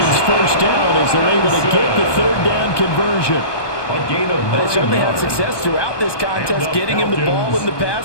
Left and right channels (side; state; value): right; late; 1.2 ms